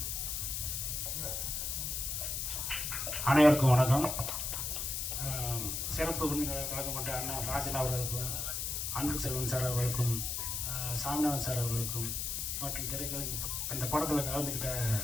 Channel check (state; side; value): noise; left; hiss, 2 dB below the sound